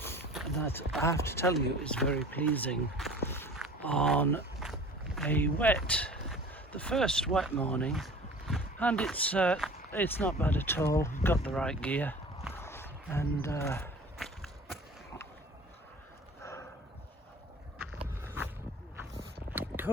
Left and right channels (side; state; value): both; normal; correlation 0.43